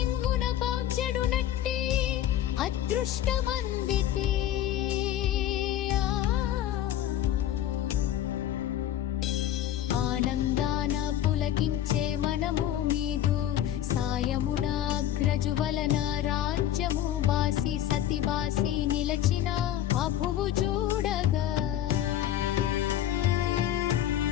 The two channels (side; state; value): right; quieter; 11.8 dB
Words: పౌజ్యడు నట్టి అదృష్టమందితే ఆనందాన పులకించే మనము మీదు సాయమున అగ్రజు వలన రాజ్యము బాసి సతి బాసి నిలచిన అభువు చూడగా